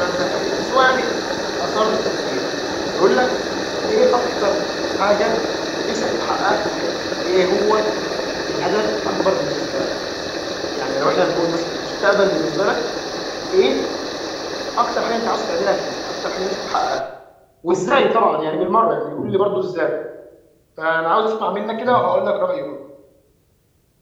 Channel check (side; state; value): both; identical; correlation 1.00